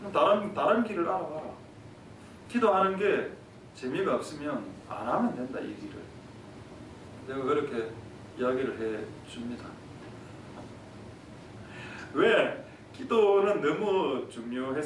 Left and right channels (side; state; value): both; identical; correlation 1.00